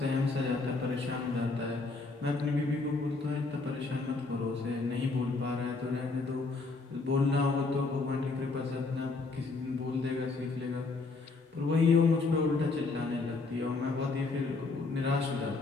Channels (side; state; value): right; quieter; 3.8 dB